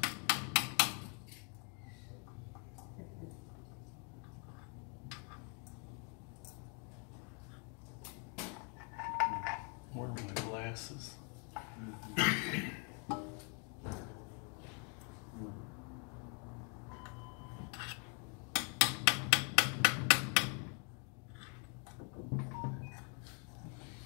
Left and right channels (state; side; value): quieter; right; 34.6 dB